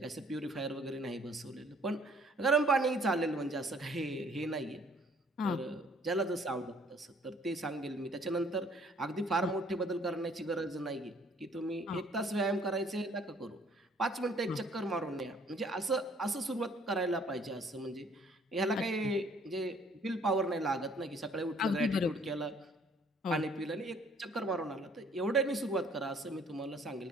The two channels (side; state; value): both; normal; correlation 0.60